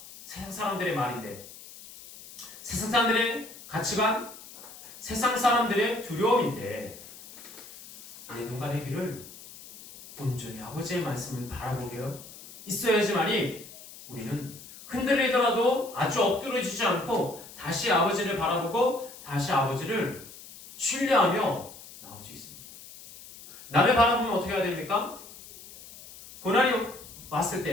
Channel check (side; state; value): left; noise; hiss, 17 dB below the sound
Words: 세상 사람들의 말인데, 세상 사람들의 가치관, 세상 사람들의 두려움인데, 내 눈과 내 귀를 온전히 아버지의 말씀을 바라보게 있어야지만이 우리는 흔들리더라도 아주 엎드러지지 않고 다시 아버지를 바라보고 다시 아버지를 신뢰하며 나올 수 있습니다. 나를 바라보면 어떻게 해야 됩니까? 고난이 왔을